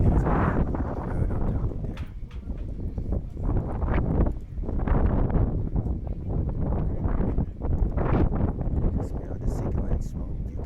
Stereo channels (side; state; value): both; identical; correlation 1.00